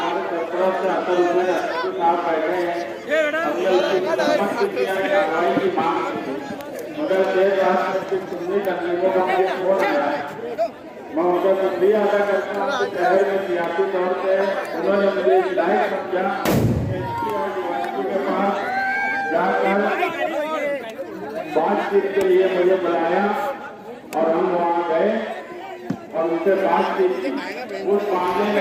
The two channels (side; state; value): both; identical; correlation 1.00